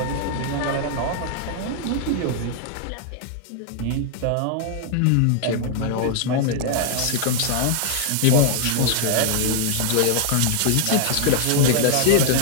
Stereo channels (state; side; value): different; both; correlation 0.00